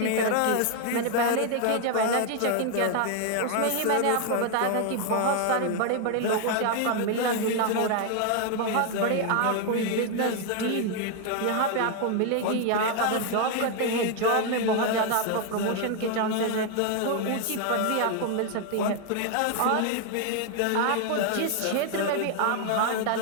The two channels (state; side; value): different; both; correlation 0.00